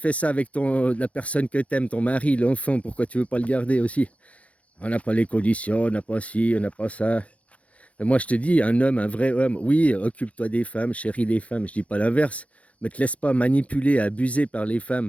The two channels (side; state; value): right; late; 0.064 ms